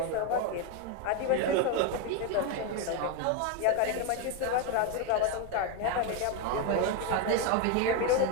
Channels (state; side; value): different; both; correlation 0.02